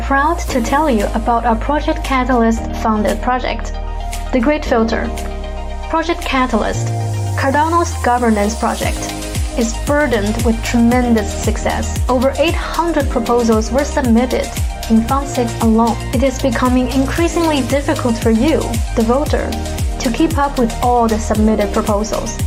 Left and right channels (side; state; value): both; identical; correlation 1.00